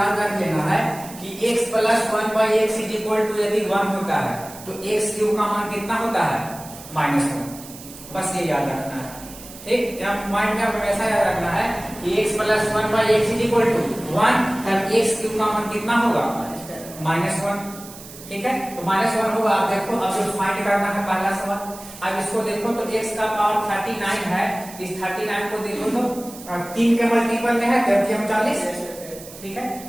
रख लेना है कि x plus 1 by x is equal to यदि 1 होता है तो x क्यूब का मान कितना होता है, -1, बस ये याद रखना है। ठीक, यहाँ माइंड में हमेशा याद रखना है कि x plus 1 by x is equal to 1, तब x क्यूब का मान कितना होगा, -1। ठीक है, तो -1 होगा। आप देखो, अब जो फाइंड करना है पहला सवाल, अब इसको देखो तो x का पावर 39 है, इस 39 को देखो तो 3 के मल्टीपल में है, 40। ठीक है,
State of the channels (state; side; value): noise; right; hiss, 16 dB below the sound